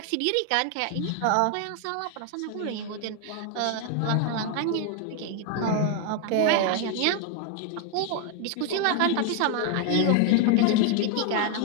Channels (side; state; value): both; different; correlation 0.01